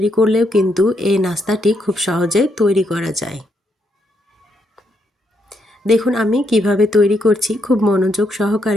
করলেও কিন্তু এই নাস্তাটি খুব সহজে তৈরি করা যায়। দেখুন আমি কিভাবে তৈরি করছি, খুব মনোযোগ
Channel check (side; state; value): both; normal; correlation 0.77